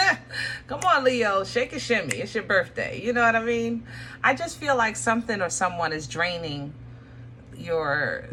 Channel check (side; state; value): both; identical; correlation 1.00